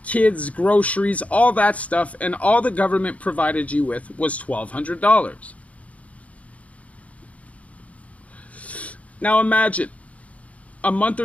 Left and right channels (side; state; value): right; late; 0.067 ms